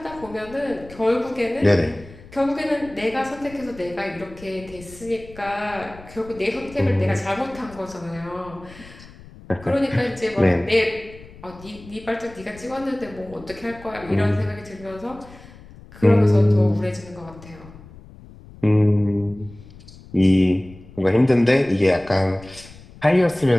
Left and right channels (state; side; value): noise; left; rumble, 20 dB below the sound